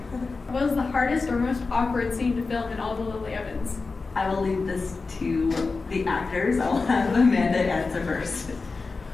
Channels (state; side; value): quieter; right; 4.1 dB